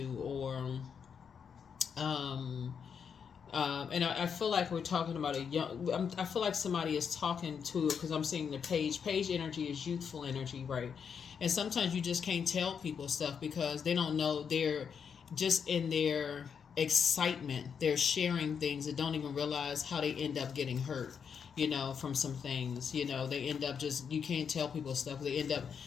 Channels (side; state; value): right; quieter; 6.9 dB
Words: or and I feel like we're talking about I feel like somebody is talking to, because I'm seeing the page energy is youthful energy, right? And sometimes you just can't tell people stuff because they don't know. They're just in their excitement, they're sharing things and don't even realize how they end up getting hurt, from some things. They end up you can't tell people stuff. They end up,